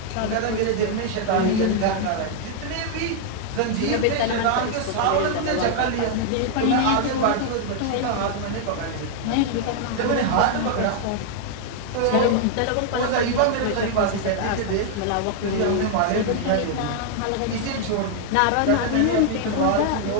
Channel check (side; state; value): both; different; correlation 0.00